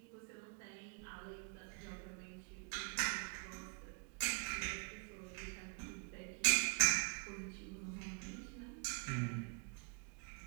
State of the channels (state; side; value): quieter; left; 35.4 dB